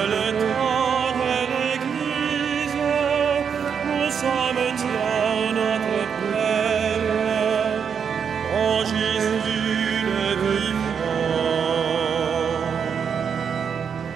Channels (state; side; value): quieter; left; 7.0 dB